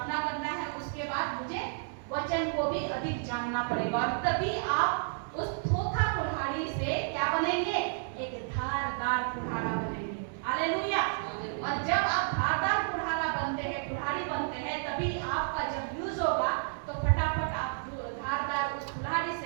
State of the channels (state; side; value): silent; left; digital silence